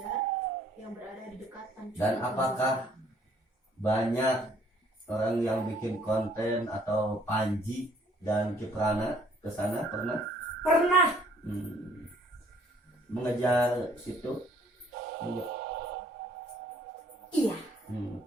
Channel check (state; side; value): normal; both; correlation 0.61